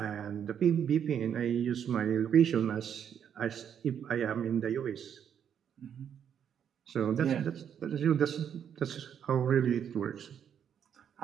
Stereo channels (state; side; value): quieter; left; 8.5 dB